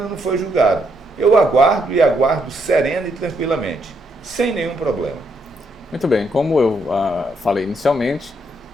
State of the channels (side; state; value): both; normal; correlation 0.75